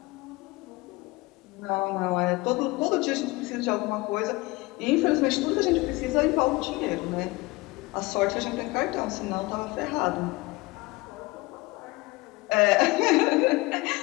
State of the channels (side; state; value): right; quieter; 22.5 dB